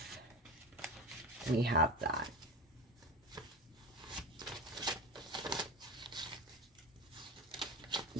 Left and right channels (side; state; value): both; normal; correlation 0.26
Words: we have that.